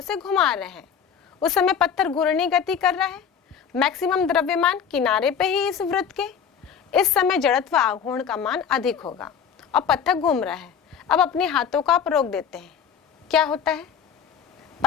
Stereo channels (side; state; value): right; quieter; 7.6 dB